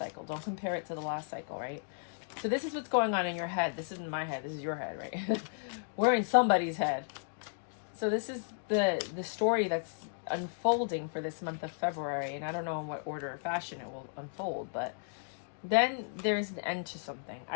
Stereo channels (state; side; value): silent; right; digital silence